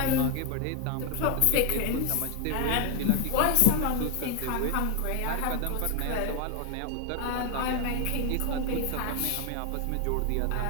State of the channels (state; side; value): different; both; correlation 0.00